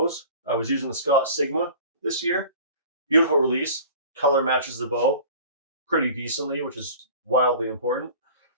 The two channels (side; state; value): both; inverted; correlation -0.42